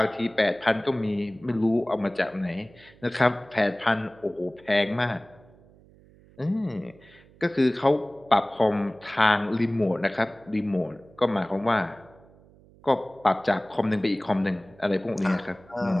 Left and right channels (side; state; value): right; noise; hum, 26 dB below the sound